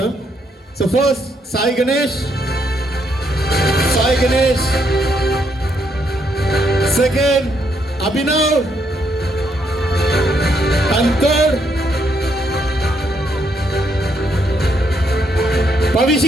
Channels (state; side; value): normal; both; correlation 0.74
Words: So first Sai Ganesh. Second, Abhinav. And third,